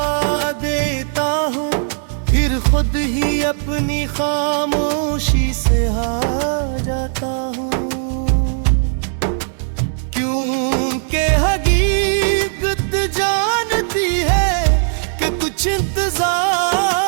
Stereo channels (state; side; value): silent; left; digital silence